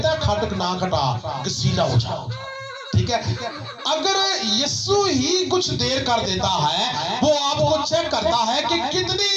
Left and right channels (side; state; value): both; identical; correlation 1.00